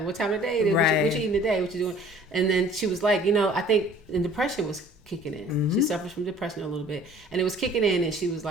what time of day it is. Right. What you eating today? What you doing? And then she was like, I think the depression was kicking in. She suffers from depression a little bit. And it was kicking in, and she was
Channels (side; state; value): both; normal; correlation 0.51